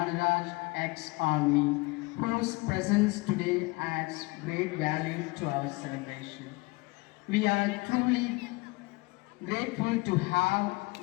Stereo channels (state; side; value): quieter; right; 24.9 dB